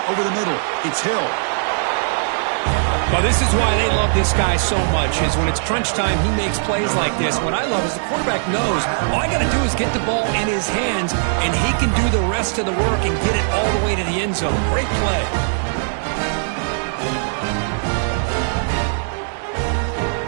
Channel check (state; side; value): silent; left; digital silence